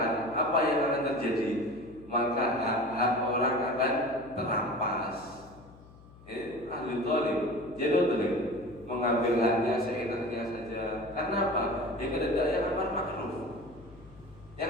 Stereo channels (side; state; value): left; noise; hum, 22 dB below the sound